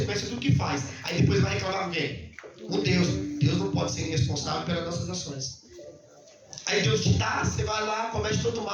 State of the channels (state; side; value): identical; both; correlation 1.00